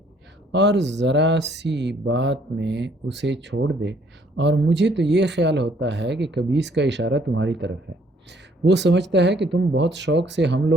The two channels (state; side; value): normal; both; correlation 0.64